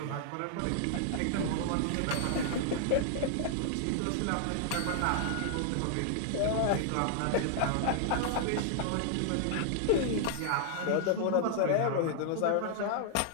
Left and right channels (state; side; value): different; both; correlation -0.01